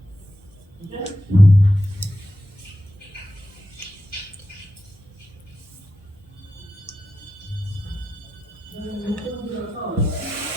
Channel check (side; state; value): both; normal; correlation 0.89